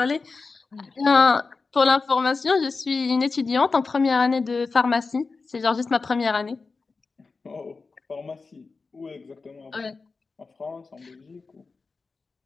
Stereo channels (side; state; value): right; quieter; 4.2 dB